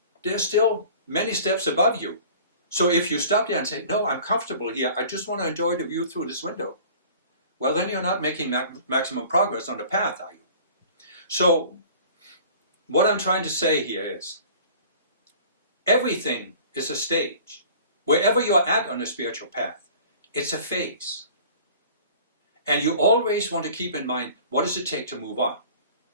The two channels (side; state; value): both; inverted; correlation -0.46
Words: there's still many steps above you. So if you stop there and say, no, I'm comfortable here, I just want to enjoy the view through this window, well, then you're not making maximum progress on the path, are you? So what I'm trying to say here is, everything is a stage. Wherever you are at on the spiritual path, it's a phase. And you always want to keep in mind, what does it take to move on?